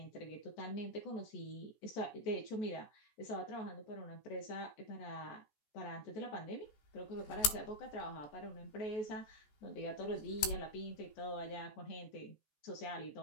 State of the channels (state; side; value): late; right; 14 ms